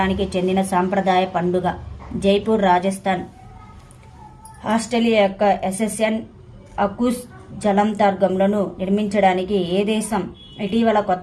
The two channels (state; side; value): identical; both; correlation 1.00